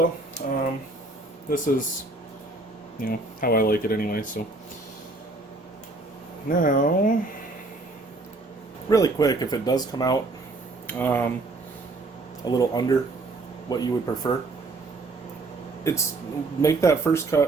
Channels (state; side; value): quieter; left; 3.2 dB